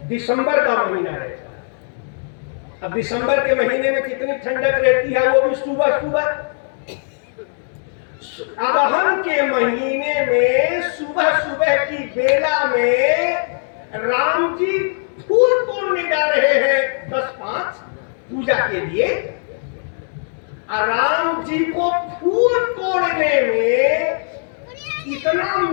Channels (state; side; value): silent; right; 66 dB below the other